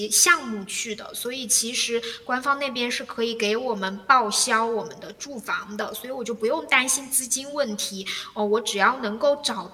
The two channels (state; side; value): identical; both; correlation 1.00